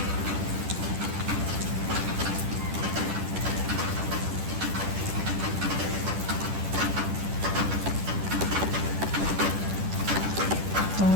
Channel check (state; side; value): late; left; 10 ms